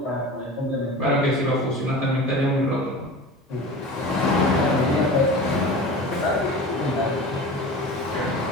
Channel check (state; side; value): normal; both; correlation 0.34